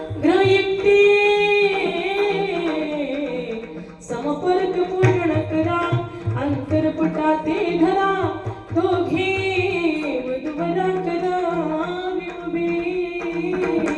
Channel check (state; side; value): identical; both; correlation 1.00